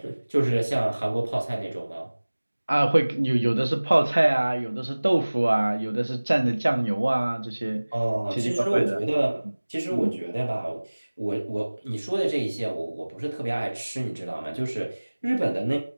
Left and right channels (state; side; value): inverted; both; correlation -1.00